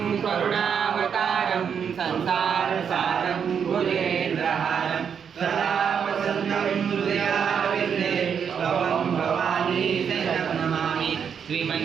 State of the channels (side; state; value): left; quieter; 7.3 dB